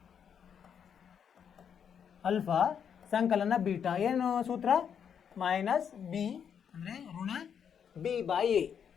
ಅಲ್ಫಾ ಸಂಕಲನ ಬೀಟಾ. ಏನು ಸೂತ್ರ, ಮೈನಸ್ ಬಿ ಅಂದರೆ ಋಣ ಬಿ ಬೈ ಎ.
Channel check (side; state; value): right; quieter; 7.8 dB